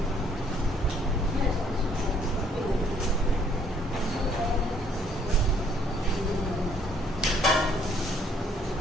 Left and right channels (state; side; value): normal; both; correlation 0.64